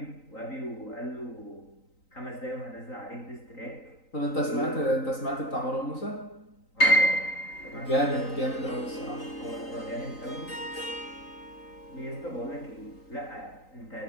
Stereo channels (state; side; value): late; right; 3.9 ms